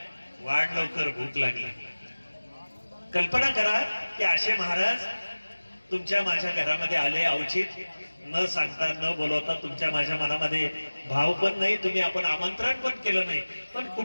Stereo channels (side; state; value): both; inverted; correlation -1.00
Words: वाढ लवकर भूक लागली। कल्पना करा की असे महाराज तुमच्या माझ्या घरामध्ये आले, अवचित न सांगता न बोलवता, तुमच्या माझ्या मनामध्ये भाव पण नाही, तुम्ही आपण आमंत्रण पण केलं नाही, पण